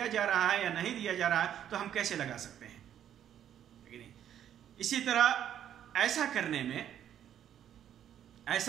جا رہا ہے یا نہیں دیا جا رہا ہے تو ہم کیسے لگا سکتے ہیں؟ اسی طرح ایسا کرنے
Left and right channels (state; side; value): quieter; left; 10.2 dB